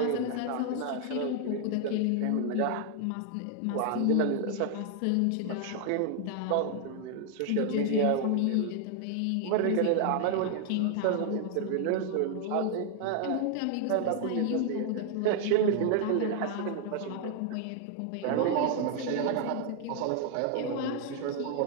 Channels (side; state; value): both; different; correlation 0.00